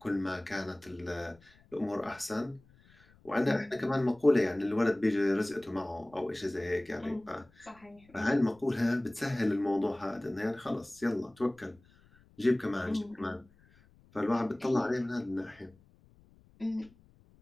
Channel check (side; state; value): left; noise; rumble, 28 dB below the sound